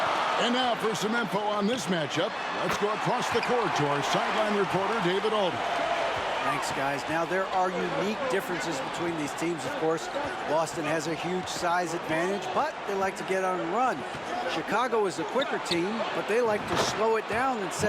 And now for some info on this matchup, let's go across the court to our sideline reporter, David Alden. Thanks, guys. Now, there are unique differences between these teams, of course. Boston has a huge size advantage, but they like to get on and run. Chicago is a quicker team, but they like to slow it down and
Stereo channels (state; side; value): identical; both; correlation 1.00